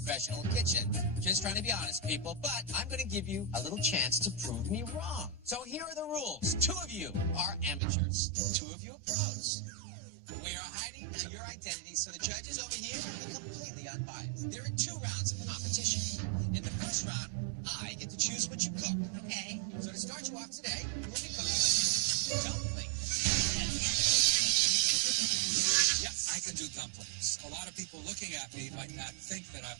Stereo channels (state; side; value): drops out; left; at 7.8 s